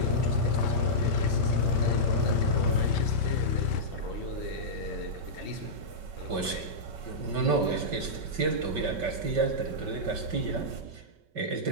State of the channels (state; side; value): late; left; 5.2 ms